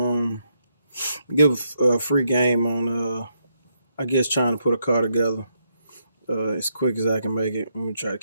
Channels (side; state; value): both; inverted; correlation -0.79